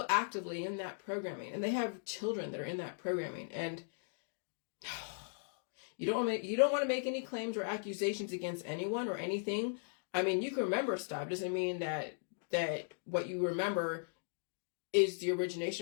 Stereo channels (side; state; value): right; silent; digital silence